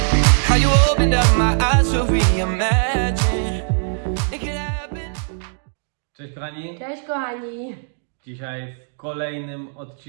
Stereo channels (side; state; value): left; silent; 65 dB below the other